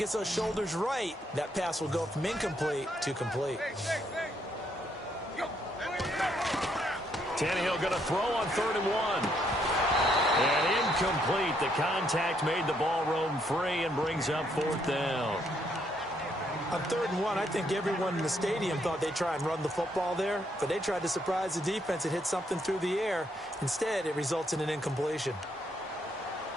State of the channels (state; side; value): normal; both; correlation 0.73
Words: those shoulders right. That pass will go from incomplete to complete. Tannehill going to throw on 3rd and 1. And incomplete. The contact made the ball roam free and brings up 4th down. On 3rd and 1, I think everyone in the stadium thought they'd try and run the football there, but they tried to surprise the defense and hit something through the air. Instead, it results in an incompletion.